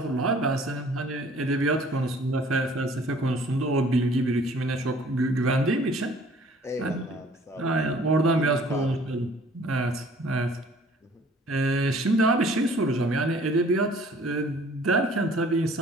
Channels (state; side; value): normal; both; correlation 0.54